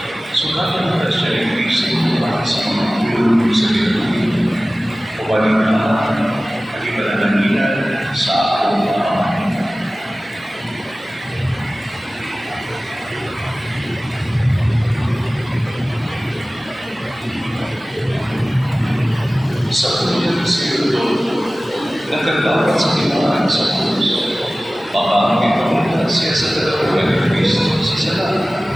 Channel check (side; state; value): both; normal; correlation 0.97